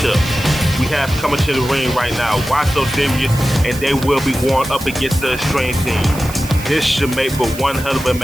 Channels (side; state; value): right; noise; hiss, 14 dB below the sound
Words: We have coming to the ring right now, Why So Serious, and they will be going up against the Extreme Team. This should make for one hell of a